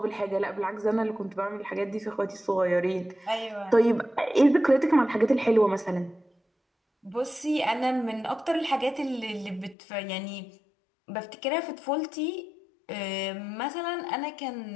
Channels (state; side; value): drops out; right; at 9.8 s